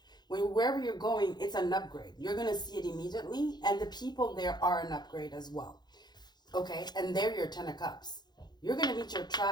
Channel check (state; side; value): late; right; 0.21 ms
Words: Wherever you're going, it's an upgrade. You're going to see it immediately, and the people there are an upgrade as well. Okay? And they're your 10 of Cups. You're going to meet your